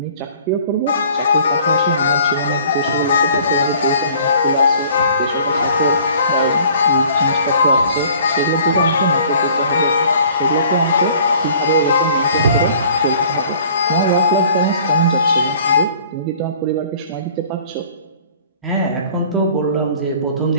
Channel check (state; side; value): inverted; both; correlation -0.52